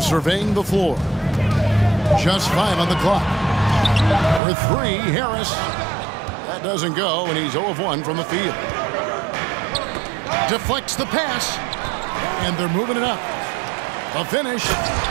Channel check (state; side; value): drops out; left; at 4.4 s